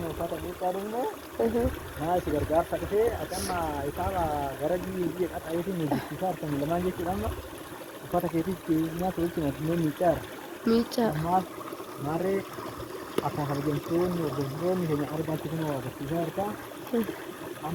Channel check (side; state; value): both; identical; correlation 1.00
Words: uffata miiccaa dhumne maa si gargaarsa dhufee ati amma isaaba gara biyya qaxareetiin miiccisiisaa argamu lamaan jechuudha amma uffata keetiif nyaata wajjin addunyaa miiccaara ammaaf maarree akkuma kabajamtoonni hordoftoonni keenya argaatti kun agarsiisaa harkaa